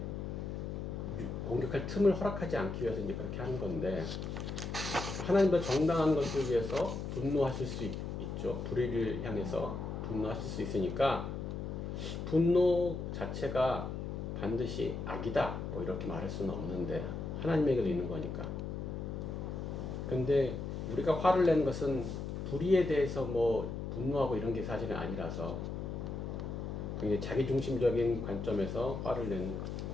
공격할 틈을 허락하지 않기 위해서 이제 그렇게 하는 건데, 하나님도 정당한 것을 위해서 분노하실 수 있죠. 불의를 향해서 분노하실 수 있으니까 분노 자체가 반드시 악이다 뭐 이렇게 말할 수는 없는데, 하나님에게도 있는 거니까. 근데 우리가 화를 내는 것은 불의에 대해서 뭐 분노하고 이런 게 사실은 아니라서 굉장히 자기중심적인 관점에서 화를 내는 것.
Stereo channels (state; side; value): noise; left; hum, 5 dB below the sound